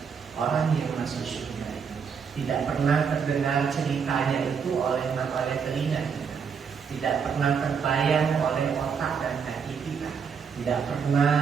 orang yang masuk surga itu. Tidak pernah terdengar ceritanya itu oleh telinga kita. Tidak pernah terbayang oleh otak dan hati kita. Tidak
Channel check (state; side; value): quieter; left; 6.4 dB